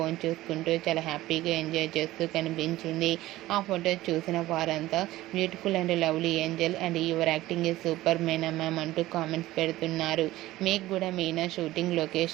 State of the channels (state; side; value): quieter; left; 16.5 dB